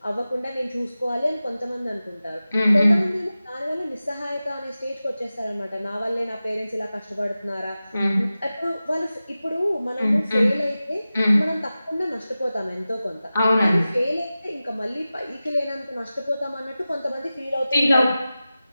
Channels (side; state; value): both; inverted; correlation -0.95